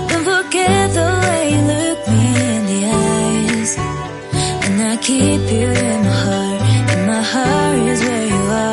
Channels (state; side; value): identical; both; correlation 1.00